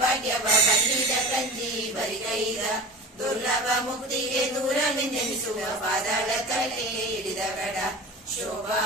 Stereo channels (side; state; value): both; normal; correlation 0.34